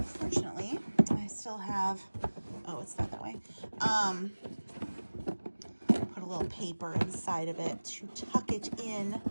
fortunately, I still have, oh, it's not that way. Put a little paper inside of it to tuck it in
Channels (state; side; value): inverted; both; correlation -1.00